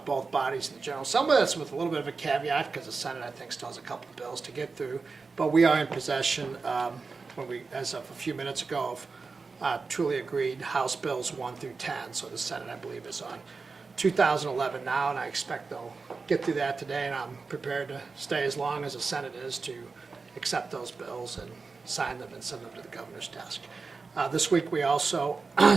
both bodies in the General Assembly. That's with a little bit of a caveat because the Senate, I think, still has a couple of bills to get through. But we are in possession, as of a few minutes ago, of truly agreed House Bills 1 through 10. So the Senate, I believe, is on 2011 now, and I expect they'll get through that today, and I'm prepared to stay as long as the Senate is to accept those bills and sign them and send them to the governor's desk. This week we also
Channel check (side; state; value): left; quieter; 4.4 dB